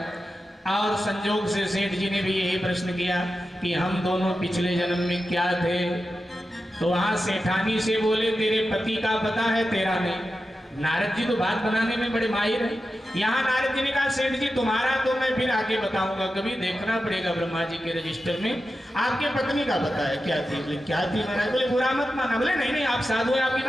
और संजोग से सेठ जी ने भी यही प्रश्न किया कि हम दोनों पिछले जन्म में क्या थे? तो वहां सेठानी से बोले तेरे पति का पता है, तेरा नहीं। नारद जी तो बात बनाने में बड़े माहिर हैं। यहाँ नारद जी ने कहा सेठ जी तुम्हारा तो मैं फिर आगे बताऊंगा, कभी देखना पड़ेगा ब्रह्मा जी के रजिस्टर में। आपके पत्नी का पता है क्या थी? बोले क्या थी महाराज? बोले बुरा मत माना। बोले नहीं नहीं आप साधु है, आपकी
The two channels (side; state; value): both; normal; correlation 0.91